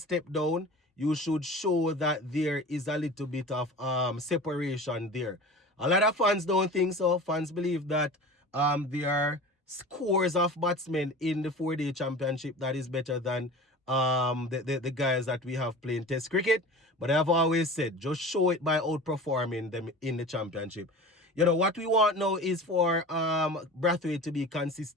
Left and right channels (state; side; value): normal; both; correlation 0.36